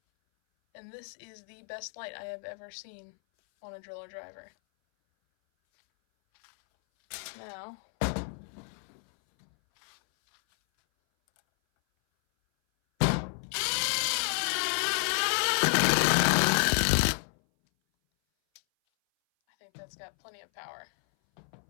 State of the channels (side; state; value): right; silent; 58 dB below the other